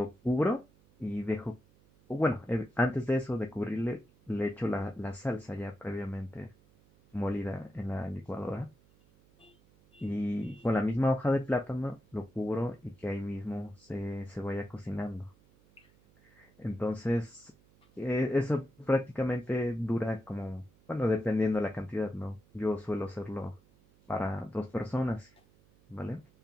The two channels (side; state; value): right; noise; hum, 29 dB below the sound